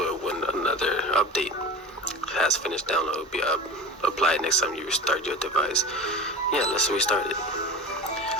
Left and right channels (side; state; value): both; normal; correlation 0.33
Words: when another update has finished download, will be applied next time you restart your device. Yeah, let's restart it.